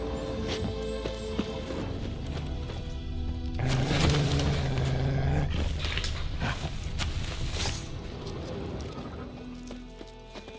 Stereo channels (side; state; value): both; identical; correlation 1.00